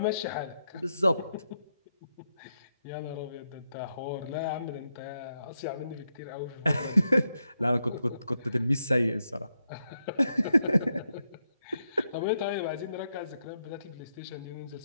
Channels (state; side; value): inverted; both; correlation -0.83